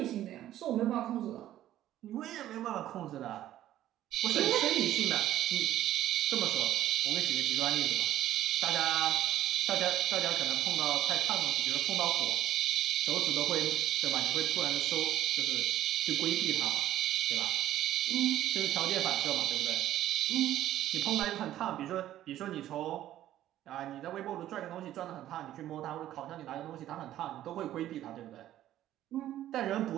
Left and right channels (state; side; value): quieter; left; 12.9 dB